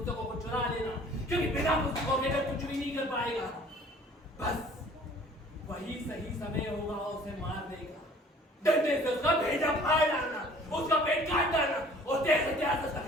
को चुरा लेना, क्योंकि बिना पुस्तकों के कुछ भी नहीं कर पाएगा। बस वही सही समय होगा उसे मार देगा। डंडे से उसका भेजा फाड़ डालना, उसका पेट काट डालना और तेज हथियार से उसका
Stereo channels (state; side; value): normal; both; correlation 0.51